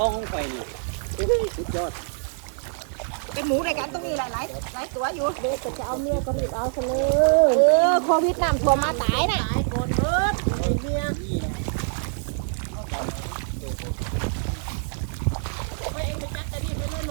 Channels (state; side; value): silent; left; digital silence